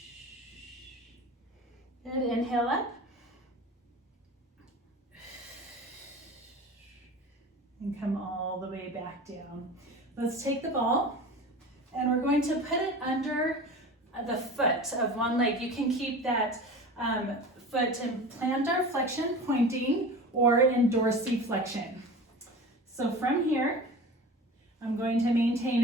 Good, inhale up. And come all the way back down. Let's take the ball and we're going to put it under the foot of one leg. You can keep that foot in plantar flexion pointing or in dorsiflexion. So from here, I'm going to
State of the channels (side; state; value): both; normal; correlation 0.35